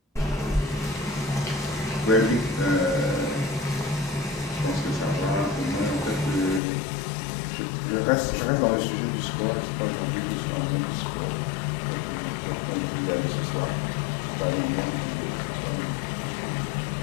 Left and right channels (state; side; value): drops out; right; at 6.6 s